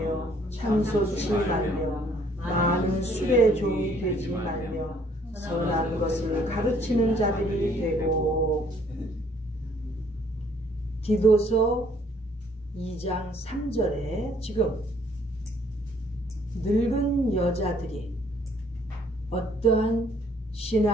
참소치 말며 많은 술의 종이 되지 말며 선한 것을 가르치는 자들이 되고. 디도서 2장 3절에 지금 늙은 여자들이 어떠한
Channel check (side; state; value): both; normal; correlation 0.62